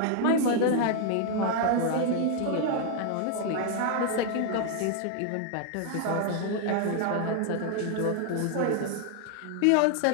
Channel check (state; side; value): different; both; correlation 0.00